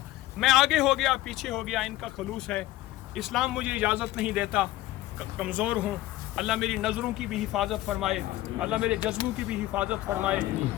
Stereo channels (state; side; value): quieter; right; 16.4 dB